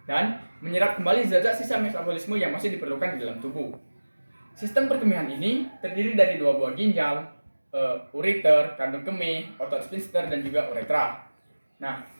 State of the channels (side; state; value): both; inverted; correlation -1.00